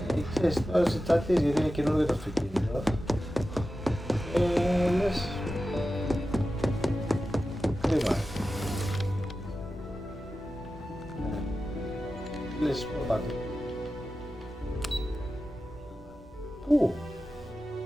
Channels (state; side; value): normal; both; correlation 0.93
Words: Ξέρεις, τώρα σε τσάτιες γιατί είναι καινούργιο το αυτοκίνητο. Λες... κρίμα. Λες, πού πάτε. Πού?